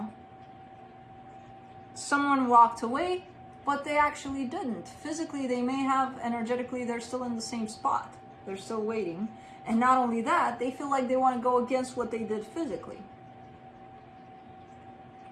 Someone walked away, but they actually didn't. Physically, they may have. Energetically, they're still in the same spot. They're still waiting. And not only that, they feel like they want to go against what they did physically.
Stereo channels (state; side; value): identical; both; correlation 1.00